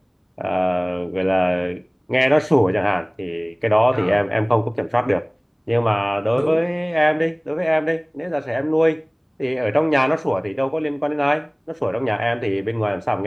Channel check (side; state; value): both; identical; correlation 1.00